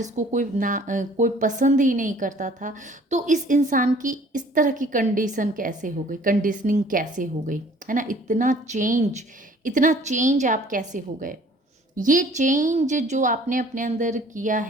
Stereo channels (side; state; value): both; normal; correlation 0.54